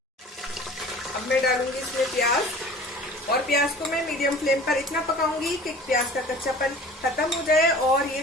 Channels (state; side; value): normal; both; correlation 0.43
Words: अब मैं डालूंगी इसमें प्याज और प्याज को मैं मीडियम फ्लेम पर इतना पकाऊंगी कि प्याज का कच्चापन खत्म हो जाए और ये